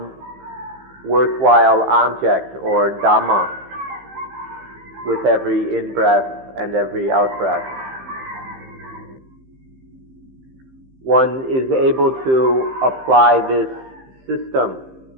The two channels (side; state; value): left; late; 15 ms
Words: worthwhile object or Dhamma with every in-breath and every out-breath. One is able to apply this system